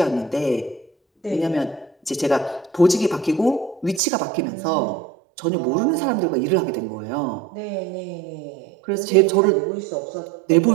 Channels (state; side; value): drops out; left; at 4.0 s